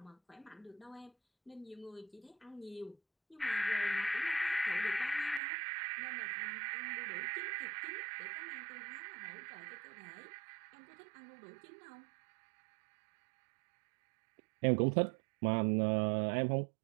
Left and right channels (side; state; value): left; drops out; at 5.4 s